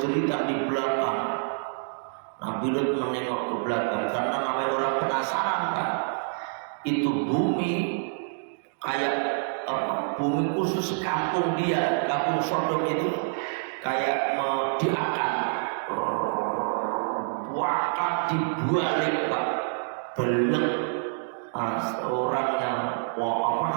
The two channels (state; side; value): silent; left; digital silence